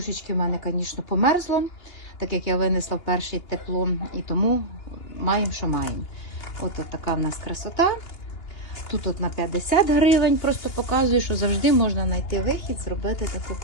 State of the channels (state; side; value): late; right; 2.8 ms